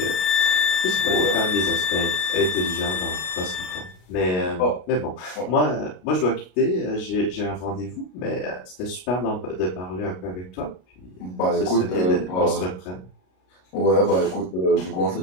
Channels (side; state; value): right; late; 33 ms